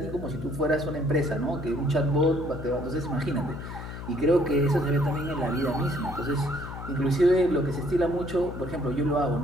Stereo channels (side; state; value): left; noise; hum, 9 dB below the sound